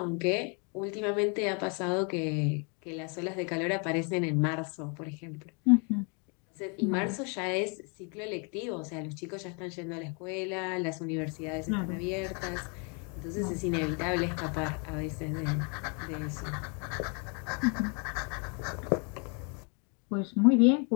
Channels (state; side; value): quieter; right; 35.7 dB